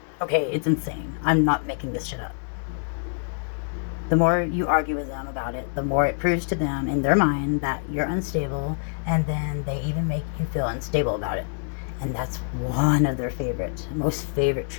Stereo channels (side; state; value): right; silent; digital silence